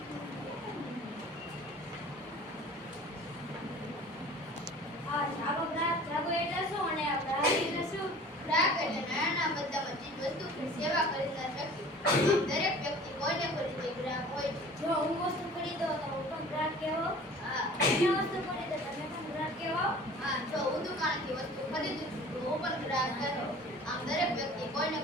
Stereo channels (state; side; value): normal; both; correlation 0.45